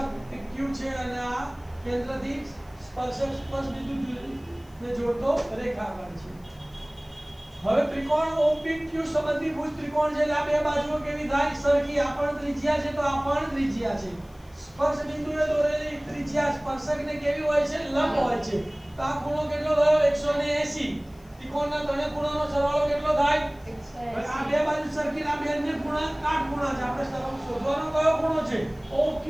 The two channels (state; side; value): noise; left; hiss, 30 dB below the sound